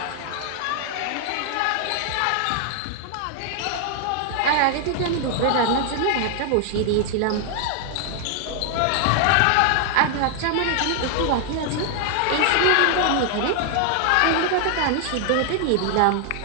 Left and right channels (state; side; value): different; both; correlation 0.00